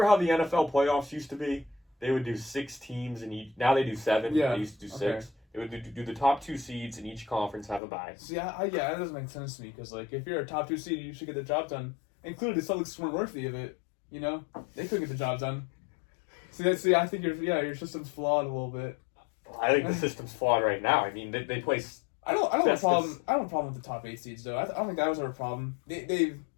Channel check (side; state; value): right; drops out; at 7.8 s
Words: how the NFL playoffs used to be? They would do 6 teams in each. Now they do 7. Yeah, They used to do 6. okay. They would do the top 2 seeds in each conference have a bye. See, yeah, that doesn't make sense to me because if you're a top 2 seed, you should get the job done. Including the Celtics weren't worthy of it. You know, they couldn't get the job done. See, I think your system's flawed a little bit. I think the system's flawed right now. I mean, they play. I don't have a That's- problem. I don't have a problem with the top 8 seeds though. I don't think that was ever a problem. They